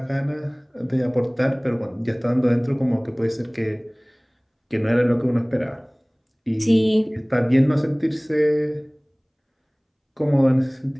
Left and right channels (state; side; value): identical; both; correlation 1.00